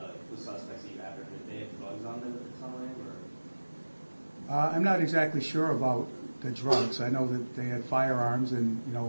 suspects you have, if they have drugs on them at the time, or? I'm not exactly sure about the drugs. I know that they had firearms, and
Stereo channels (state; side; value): inverted; both; correlation -1.00